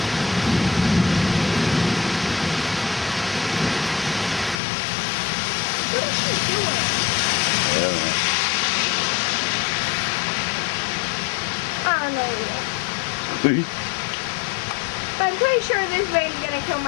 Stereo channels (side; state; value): right; drops out; at 4.6 s